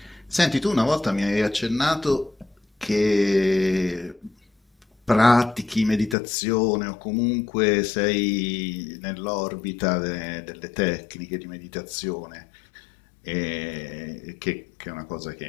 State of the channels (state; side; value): drops out; right; at 6.2 s